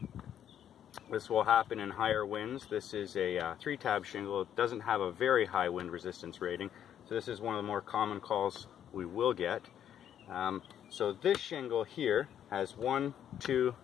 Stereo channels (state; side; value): quieter; right; 9.8 dB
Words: This will happen in higher winds. This is a 3-tab shingle. It doesn't have a very high wind resistance rating, so this is one of the more common calls we will get. So this shingle here has 1, 2,